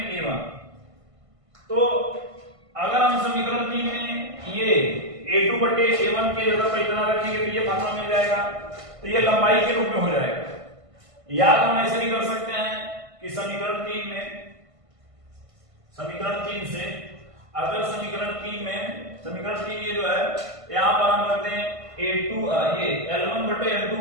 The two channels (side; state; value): left; late; 1.5 ms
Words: A1। तो अगर हम समीकरण 3 में ये A2 बटे A1 के जगह पर इतना रखेंगे तो ये फार्मूला मिल जाएगा, तो ये लंबाई के रूप में हो जाएगा। या तो हम ऐसे भी कर सकते हैं कि समीकरण 3 से अगर समीकरण 3 ये जो है यहां पर हम रखते हैं ये L1 बटे L2